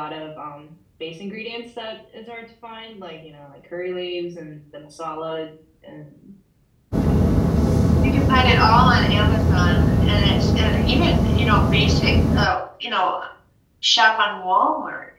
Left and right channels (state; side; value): identical; both; correlation 1.00